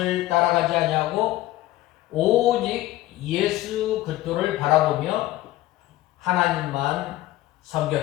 따라가지 아니하고 오직 예수 그리스도를 바라보며 하나님만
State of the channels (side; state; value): right; quieter; 16.2 dB